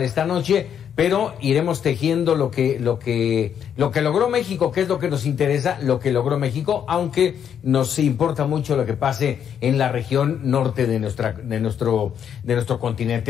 esta noche, pero iremos tejiendo lo que logró México, que es lo que nos interesa, lo que logró México, aunque nos importa mucho lo que pase en la región norte de nuestro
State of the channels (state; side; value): quieter; right; 8.6 dB